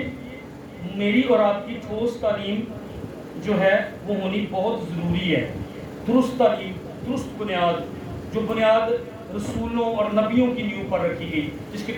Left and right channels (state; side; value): identical; both; correlation 1.00